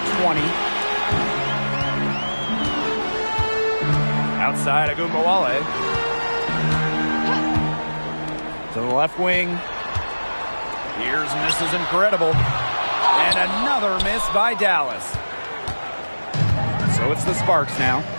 20. Outside Agumbawale. To the left wing. Here's misses incredible. And another miss by Dallas. So it's the Sparks now.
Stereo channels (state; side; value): inverted; both; correlation -1.00